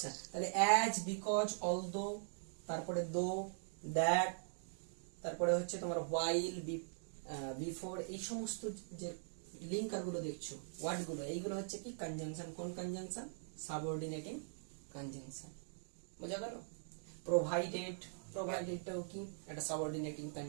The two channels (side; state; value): left; silent; digital silence